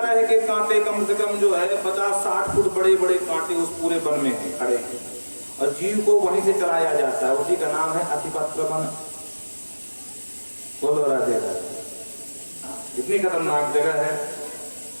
के कांटे कम से कम जो है 50-60 फुट बड़े बड़े कांटे उस पूरे वन में हैं, खड़े हैं और जीव को वहीं से चलाया जाता है। उसी का नाम है असिपत्र वन। बोलो राधे राधे। इतनी खतरनाक जगह है।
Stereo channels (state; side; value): inverted; both; correlation -1.00